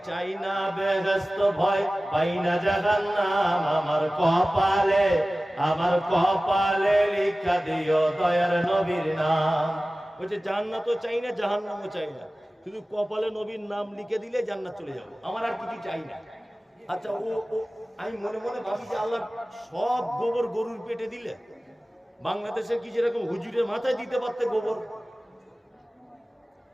চাই না বেহেশত, ভয় পাই না জাহান্নাম, আমার কপালে লিখা দিও দয়ার নবীর নাম। বলছে জান্নাতও চাই না, জাহান্নামও চাই না, শুধু কপালে নবীর নাম লিখে দিলে জান্নাত চলে যাবো, আমার আর কিছু চাই না। আচ্ছা, ও আমি মনে মনে ভাবি যে আল্লাহ সব গোবর গরুর পেটে দিলে, বাংলাদেশে কি যেরকম হুজুরের মাথায় দিতে পারতে গোবর,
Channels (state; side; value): normal; both; correlation 0.97